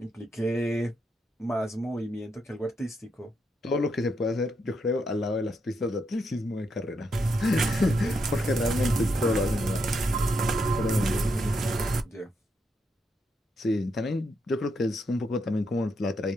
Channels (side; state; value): both; normal; correlation 0.80